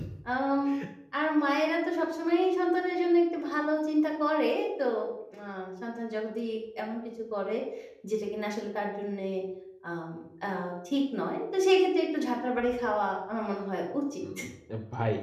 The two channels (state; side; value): identical; both; correlation 1.00